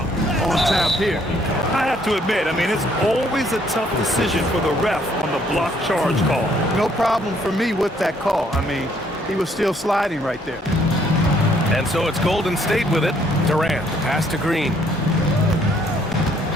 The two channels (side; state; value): both; normal; correlation 0.66